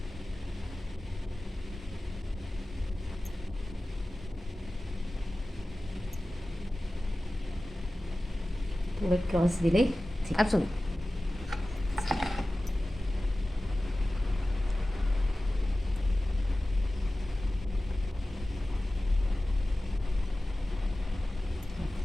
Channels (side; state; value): both; normal; correlation 0.96